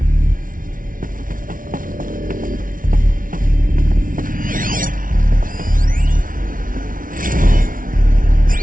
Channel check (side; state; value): left; late; 0.39 ms